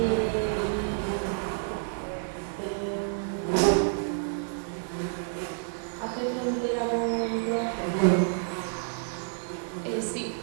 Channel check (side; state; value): left; silent; digital silence